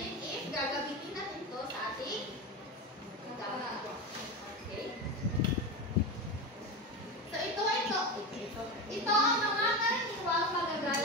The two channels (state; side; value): normal; both; correlation 0.21